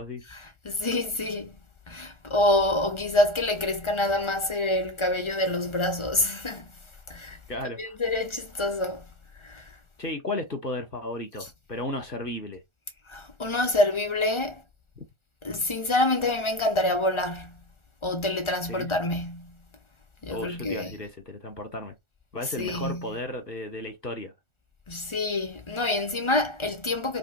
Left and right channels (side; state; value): right; late; 1.4 ms